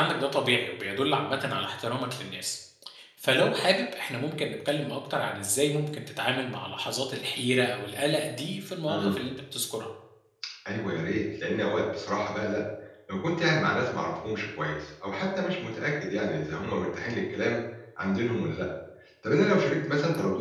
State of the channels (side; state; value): both; identical; correlation 1.00